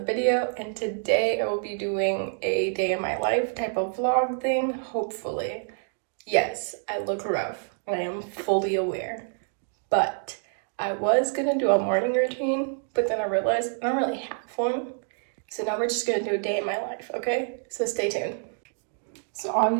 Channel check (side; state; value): left; silent; 60 dB below the other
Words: video, and today I will be doing a day in my life type of vlog thing, hopefully. Yes, I look rough, I am fully aware, but I was gonna do a morning routine, but then I realized I don't really have one, so now we're just gonna do a day in my life, okay? So stay tuned. So